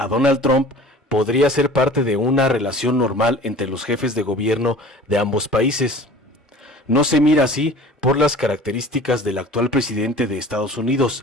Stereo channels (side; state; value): both; normal; correlation 0.43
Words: Donald Trump podría ser parte de una relación normal entre los jefes de gobierno de ambos países. No se mira así por las características del actual presidente de Estados